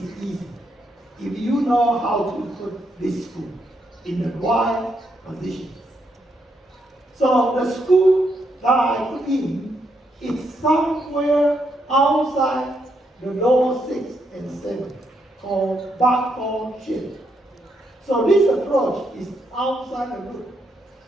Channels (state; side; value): normal; both; correlation 0.78